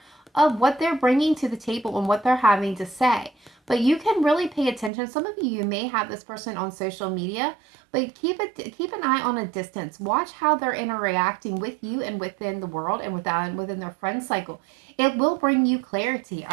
of what they're bringing to the table and what they're having to say. But you can really pay attention. Some of you may have this person on social media, but keep an eye on a distance. Watch how they're interacting with you and within the world and within their friend cycle. It will bring you clarity,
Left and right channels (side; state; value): left; drops out; at 4.9 s